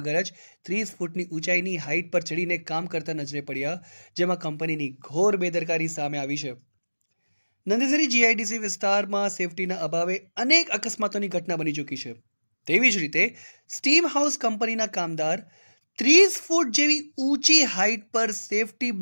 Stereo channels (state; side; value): inverted; both; correlation -1.00